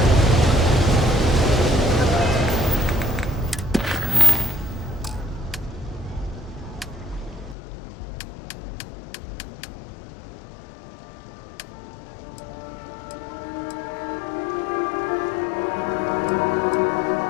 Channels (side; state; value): right; drops out; at 7.6 s